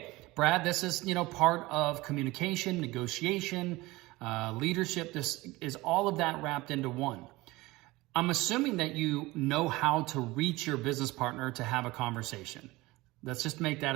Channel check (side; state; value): left; quieter; 20.6 dB